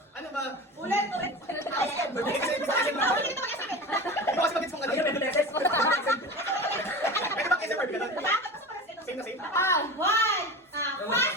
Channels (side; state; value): both; normal; correlation 0.30